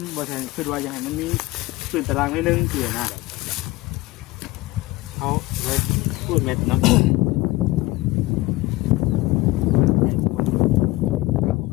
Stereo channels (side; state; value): right; quieter; 20.0 dB